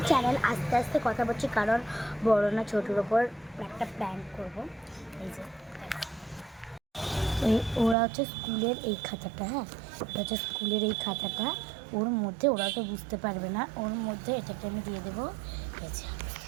channel. আস্তে আস্তে কথা বলছি কারণ বড় না ছোটোর ওপর একটা প্র্যাঙ্ক করব। এই যে ওরা হচ্ছে স্কুলের এই খাতাটা, হ্যাঁ ওটা হচ্ছে স্কুলের এই খাতাটা, ওর মধ্যে ওরা তো বুঝতে পারবে না, ওর মধ্যে এটাকে আমি দিয়ে দেবো। এই যে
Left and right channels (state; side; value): drops out; left; at 8.0 s